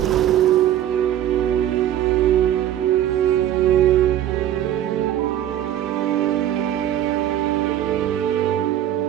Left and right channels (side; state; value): left; quieter; 11.7 dB